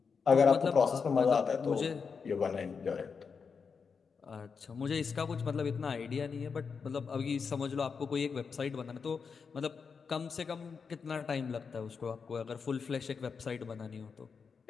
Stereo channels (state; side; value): quieter; right; 5.7 dB